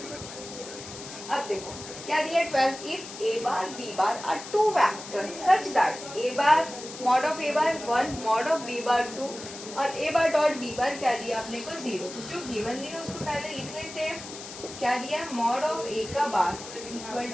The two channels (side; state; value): left; noise; hiss, 12 dB below the sound